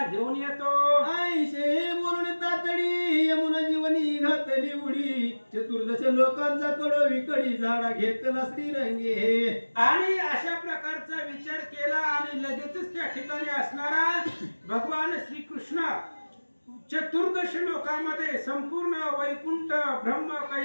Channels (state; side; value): inverted; both; correlation -1.00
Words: घेऊन येतो। आईशे बोलून तातडी यमुना जीवनी घातली उडी चतुर्दश लोकांचा कडो विकडी झाडा घेतला श्रीरंगे। आणि अशा प्रकारचा विचार केला आणि लगेचच त्या ठिकाणी असणारा भगवान श्रीकृष्ण चतुर्दश लोकांमध्ये संपूर्ण वैकुंठ ब्रह्म